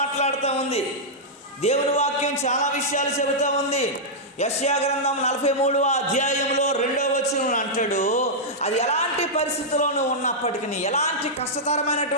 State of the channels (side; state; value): both; normal; correlation -0.08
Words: ఉంది, దేవుని వాక్యం చాలా విషయాలు చెబుతూ ఉంది. యెషయా గ్రంథం 43వ అధ్యాయంలో 2వ వచనం అంటాడు, అది ఎలాంటి పరిస్థితుల్లోనూ ఉన్నప్పటికీ, ఎలాంటి